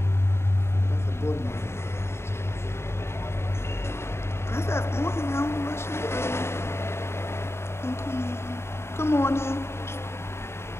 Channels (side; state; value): right; late; 0.12 ms